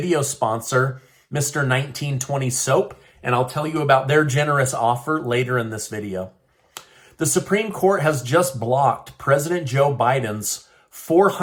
sponsor, Mr. 1920 Soap, and I'll tell you about their generous offer later in this video. The Supreme Court has just blocked President Joe Biden's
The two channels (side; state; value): both; identical; correlation 1.00